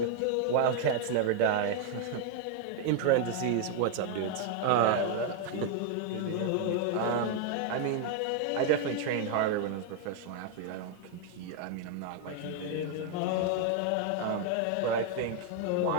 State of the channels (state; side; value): different; both; correlation 0.00